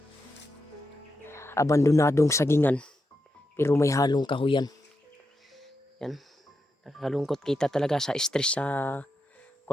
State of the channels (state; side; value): normal; both; correlation 0.86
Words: abandonadong sagingan. Pero may halong kahuyan. Yan. Nakakalungkot kita talaga sa stress sa